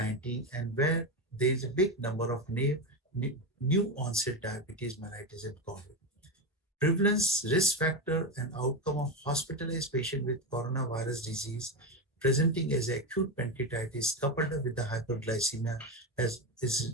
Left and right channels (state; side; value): normal; both; correlation 0.14